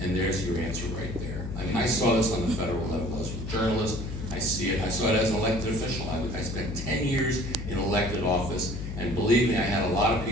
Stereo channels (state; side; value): noise; left; hum, 6 dB below the sound